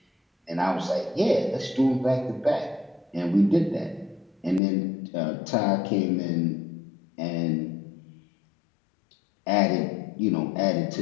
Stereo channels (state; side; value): drops out; right; at 4.6 s